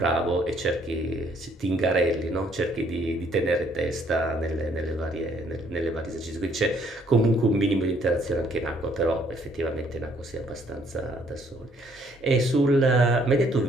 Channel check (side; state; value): both; normal; correlation 0.65